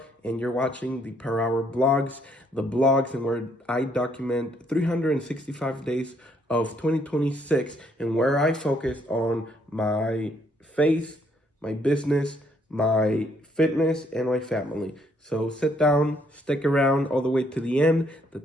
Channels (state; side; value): normal; both; correlation 0.69